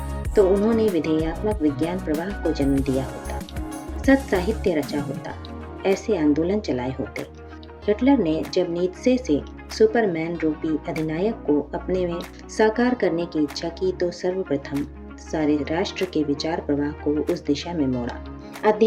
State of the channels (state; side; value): identical; both; correlation 1.00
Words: तो उन्होंने विधेयात्मक विज्ञान प्रवाह को जन्म दिया होता, सत साहित्य रचा होता, ऐसे आंदोलन चलाए होते। हिटलर ने जब नीत्शे से सुपरमैन रूपी अधिनायक को अपने में साकार करने की इच्छा की तो सर्वप्रथम सारे राष्ट्र के विचार प्रवाह को उस दिशा में मोड़ा।